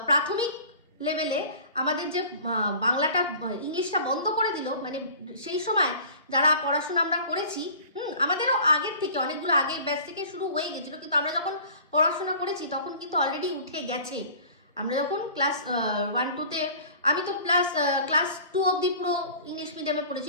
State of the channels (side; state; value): both; inverted; correlation -0.44